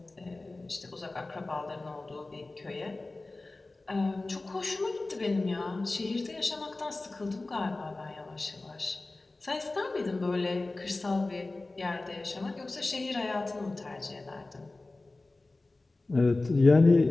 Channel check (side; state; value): right; quieter; 3.1 dB